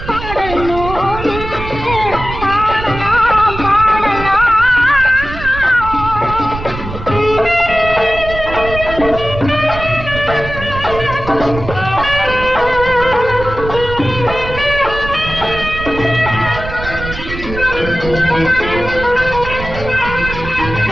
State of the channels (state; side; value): noise; right; rumble, 9 dB below the sound